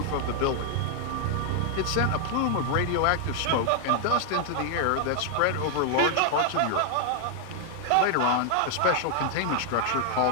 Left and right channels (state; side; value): different; both; correlation 0.00